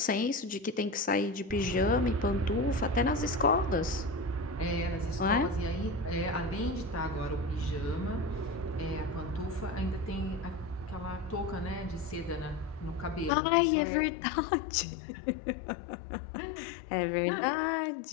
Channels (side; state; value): right; drops out; at 13.3 s